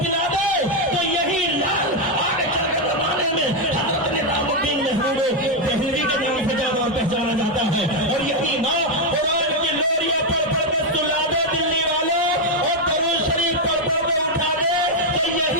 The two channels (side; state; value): both; normal; correlation 0.03